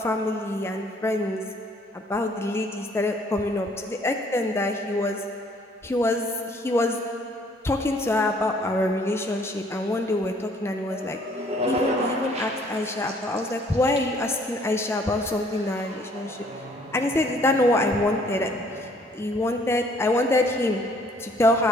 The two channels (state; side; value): normal; both; correlation 0.60